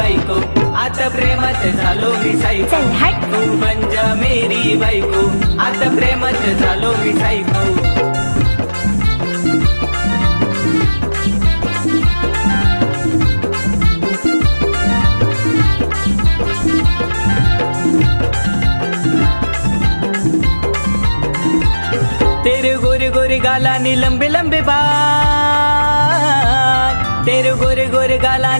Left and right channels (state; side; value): inverted; both; correlation -1.00